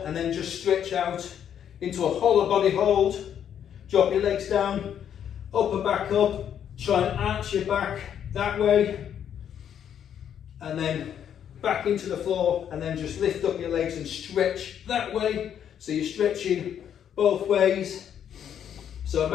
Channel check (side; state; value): right; quieter; 9.2 dB